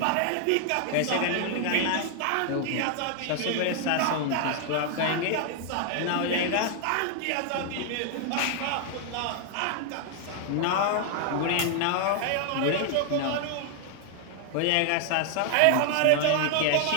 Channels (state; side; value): different; both; correlation 0.00